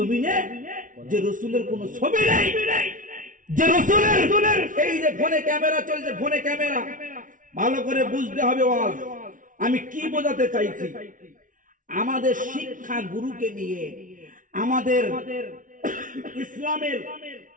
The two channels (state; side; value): late; left; 0.38 ms